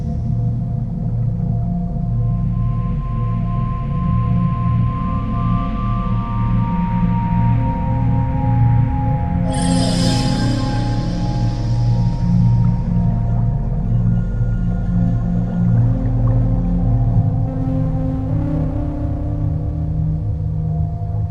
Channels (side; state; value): both; identical; correlation 1.00